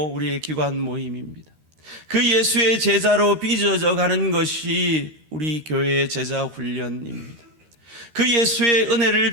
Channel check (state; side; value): late; left; 13 ms